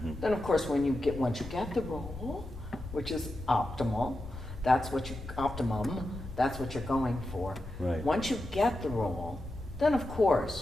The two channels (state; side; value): noise; left; rumble, 12 dB below the sound